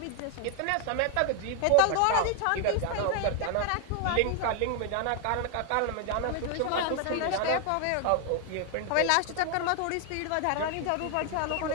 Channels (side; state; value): both; different; correlation 0.00